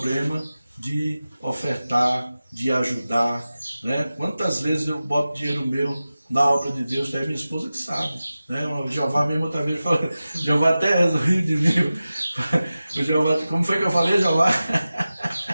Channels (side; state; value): both; inverted; correlation -0.95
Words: de ofertar, de ajudar, né? Quantas vezes eu boto dinheiro meu na obra de Deus, tem minha esposa que sabe, né? O Jeová mesmo outra vez falou, o Jeová até riu de mim. O Jeová, como foi que eu falei, Jeová?